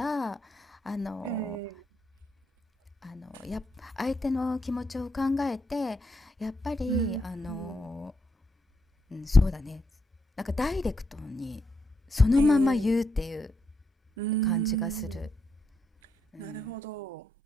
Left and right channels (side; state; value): both; normal; correlation 0.80